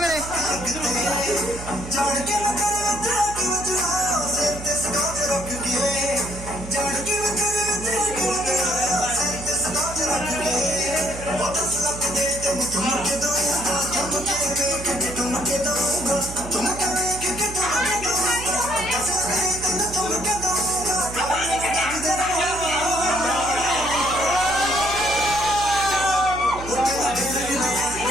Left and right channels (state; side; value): noise; right; hum, 11 dB below the sound